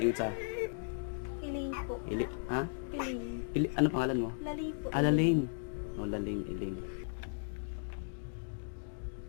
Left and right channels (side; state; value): right; silent; digital silence